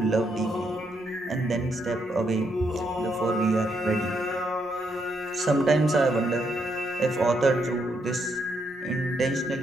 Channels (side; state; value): both; normal; correlation 0.77